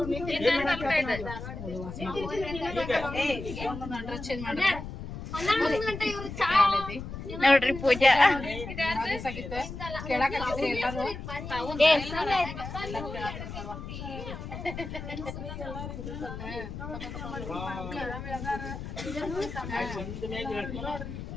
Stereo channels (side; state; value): left; noise; rumble, 9 dB below the sound